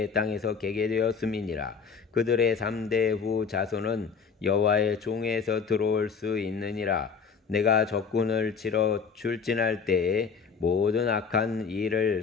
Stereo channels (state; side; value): quieter; right; 5.8 dB